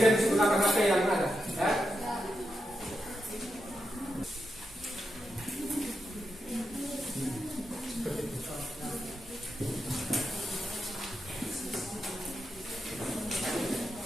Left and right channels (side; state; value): both; normal; correlation 0.87